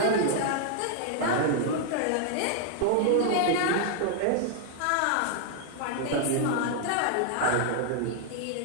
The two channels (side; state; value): both; different; correlation 0.00